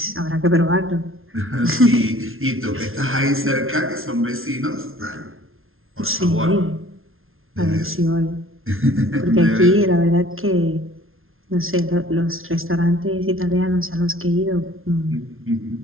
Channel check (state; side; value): late; left; 0.61 ms